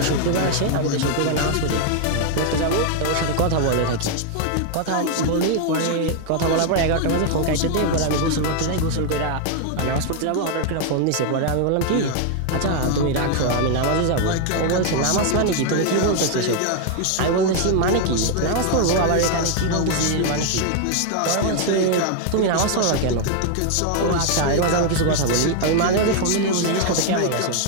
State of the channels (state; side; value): different; both; correlation 0.00